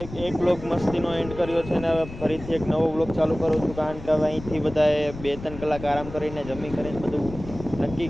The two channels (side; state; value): left; noise; rumble, 13 dB below the sound